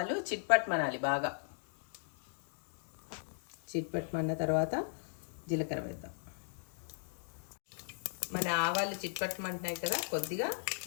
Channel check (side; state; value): right; silent; digital silence